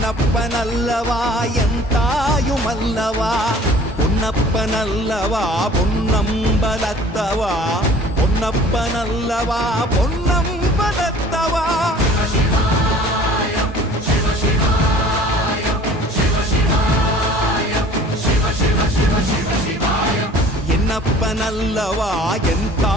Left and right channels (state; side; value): normal; both; correlation 0.49